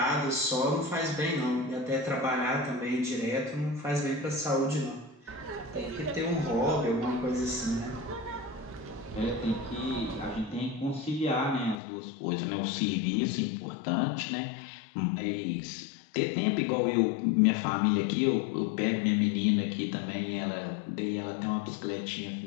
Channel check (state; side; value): drops out; right; at 11.8 s